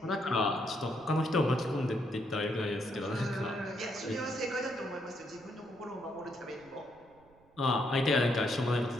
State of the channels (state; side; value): noise; right; rumble, 29 dB below the sound